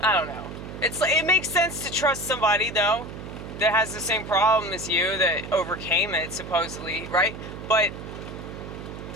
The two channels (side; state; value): right; noise; hum, 10 dB below the sound